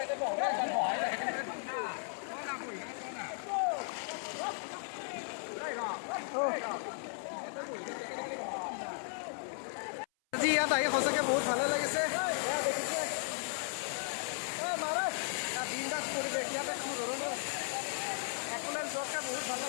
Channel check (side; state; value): right; silent; 54 dB below the other